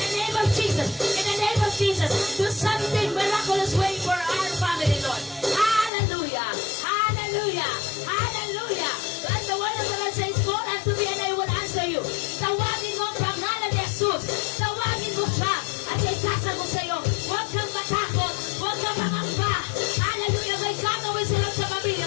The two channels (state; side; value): drops out; right; at 5.9 s